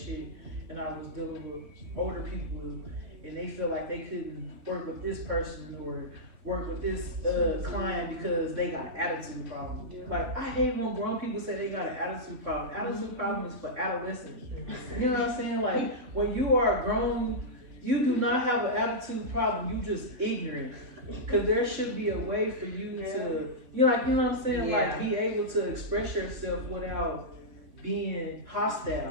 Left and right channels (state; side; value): late; left; 3.5 ms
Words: and I was dealing with older people and they feel like they couldn't work with this person or work with this client because they got an attitude problem. Like, I hate when grown people say they got an attitude problem. Attitude problem is for adolescents. You know what I'm saying? Like, when you are grown, you do not have an attitude problem. You just ignorant. Cause there should be a way for you to, you know what I'm saying? Like, be able to express yourself without being